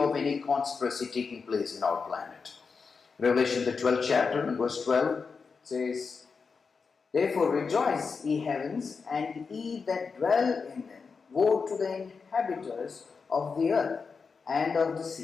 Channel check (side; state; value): right; quieter; 5.1 dB